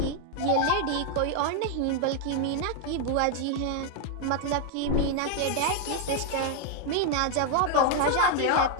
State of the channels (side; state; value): both; different; correlation 0.00